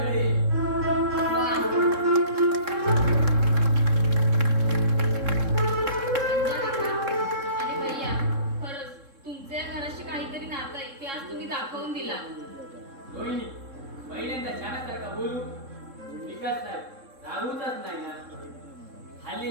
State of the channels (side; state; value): left; late; 3.7 ms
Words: अरे भैया, खरंच तुमच्या या घराशी काहीतरी नातं आहे ते आज तुम्ही दाखवून दिला. रोहिणी, पहिल्यांदा छानासारखा बोलू. विकास साहेब रागूचाच नाही ना.